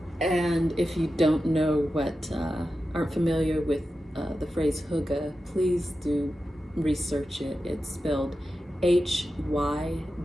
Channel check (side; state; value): both; normal; correlation 0.92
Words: And if you don't know aren't familiar with the phrase hygge, please do research it. It's spelled Hygge,